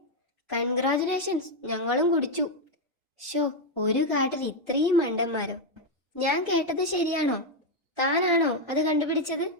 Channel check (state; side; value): normal; both; correlation 0.02